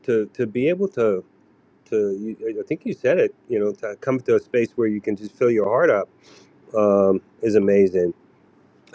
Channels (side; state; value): both; identical; correlation 1.00